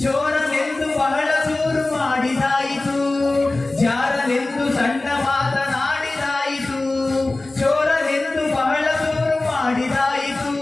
ಚೋರನೆಂದು ಬಹಳ ದೂರು ಮಾಡಿದಾಯಿತು ಜಾರನೆಂದು ಸಣ್ಣ ಮಾತನಾಡಿದಾಯಿತು ಚೋರನೆಂದು ಬಹಳ ದೂರು ಮಾಡಿದಾಯಿತು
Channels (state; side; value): quieter; right; 3.0 dB